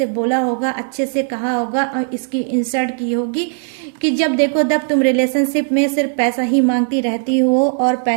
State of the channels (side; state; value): left; silent; digital silence